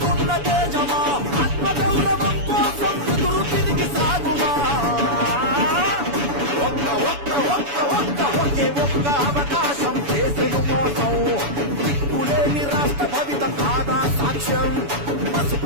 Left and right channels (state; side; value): late; left; 7.0 ms